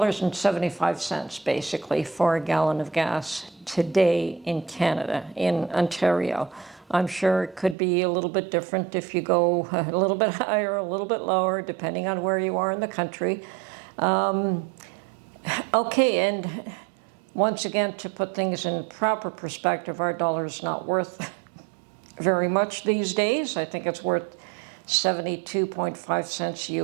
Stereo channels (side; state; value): left; drops out; at 7.8 s